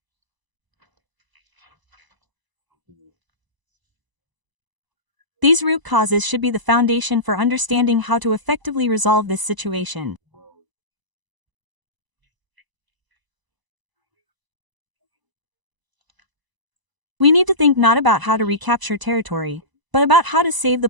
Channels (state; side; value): late; left; 1.0 ms